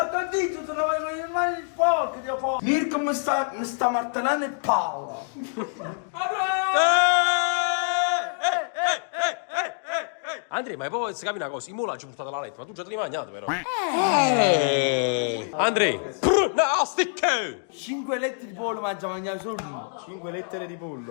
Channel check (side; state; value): right; silent; 61 dB below the other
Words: il dito, se non avevo le mani sporche, Dio po'. Mirko mi sta martellando il palla. Andre, Andrea, ma poi si capi una cosa, i mulaggi portate alla lettera, ma tu già te li hai mangiati però. Andrea, nastic! 5 letti di pollo mangia mangiare solo tu. 5 lettere di